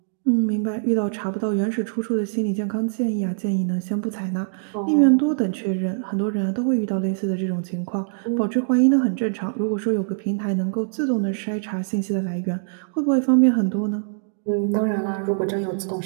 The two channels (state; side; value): silent; left; digital silence